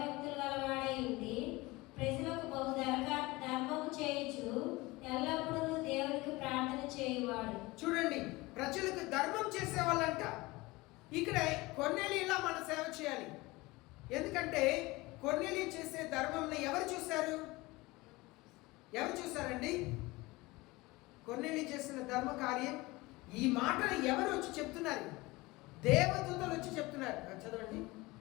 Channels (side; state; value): right; quieter; 21.7 dB